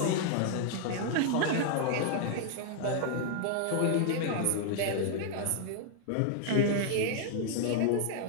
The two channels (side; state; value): both; different; correlation 0.00